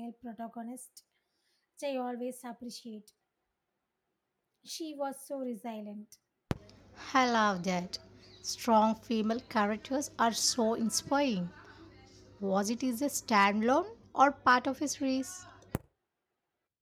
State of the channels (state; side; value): identical; both; correlation 1.00